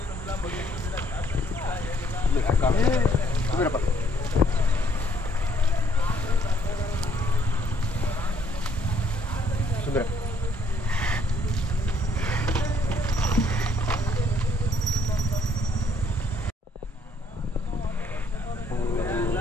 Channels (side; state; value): both; normal; correlation 0.67